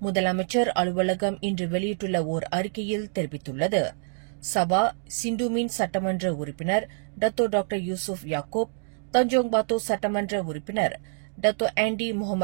முதலமைச்சர் அலுவலகம் இன்று வெளியிட்டுள்ள ஓர் அறிக்கையில் தெரிவித்துள்ளது. சபா சிண்டுமின் சட்டமன்ற உறுப்பினர் டத்தோ டாக்டர் யூசுப் யாக்கூப், தஞ்சோங் பாத்தோ சட்டமன்ற உறுப்பினர் டத்தோ ஆண்டி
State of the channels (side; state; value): left; silent; digital silence